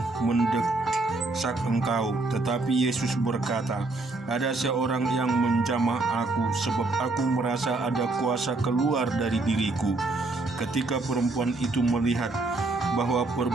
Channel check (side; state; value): left; quieter; 3.2 dB